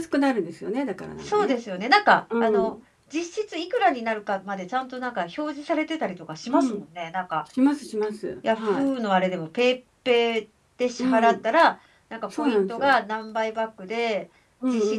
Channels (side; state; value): both; identical; correlation 1.00